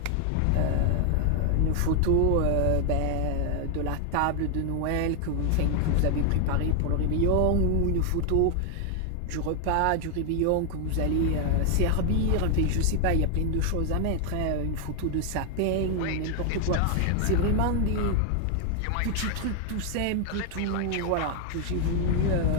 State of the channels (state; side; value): different; both; correlation 0.00